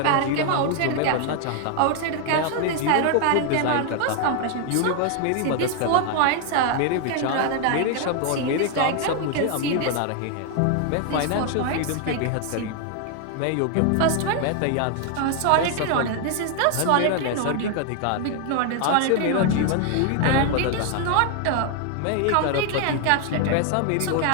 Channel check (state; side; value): different; both; correlation 0.00